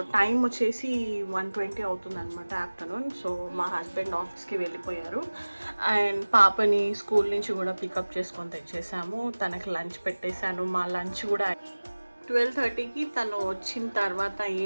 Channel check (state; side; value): inverted; both; correlation -1.00